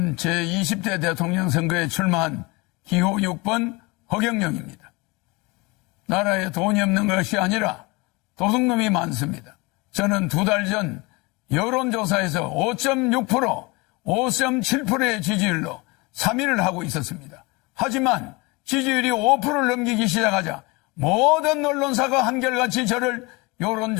제20대 대통령 선거에 출마한 기호 6번 허경영입니다. 나라에 돈이 없는 것이 아니라 도둑놈이 많습니다. 저는 2달 전 여론조사에서 5.6%, 5.7%의 지지율로 3위를 하고 있었습니다. 하지만 지지율이 5%를 넘기기 시작하자 모든 언론사가 한결같이 저를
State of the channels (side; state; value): right; quieter; 25.6 dB